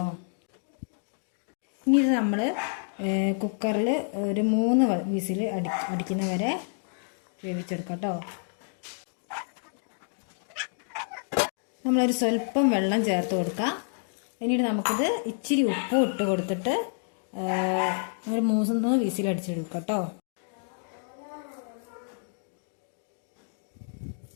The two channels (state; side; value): silent; right; digital silence